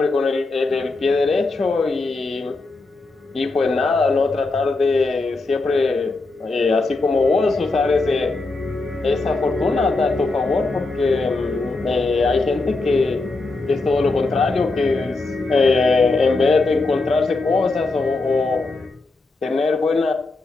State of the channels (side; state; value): right; quieter; 3.4 dB